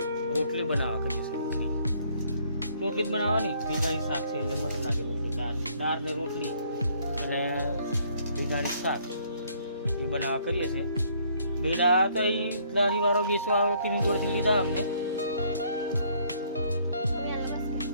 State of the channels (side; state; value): both; inverted; correlation -0.64